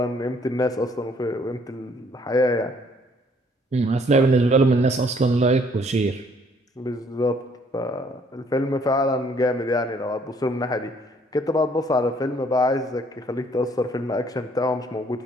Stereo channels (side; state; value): both; normal; correlation 0.63